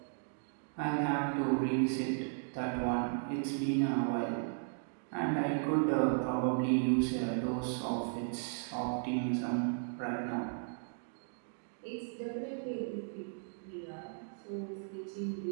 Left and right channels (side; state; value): left; silent; digital silence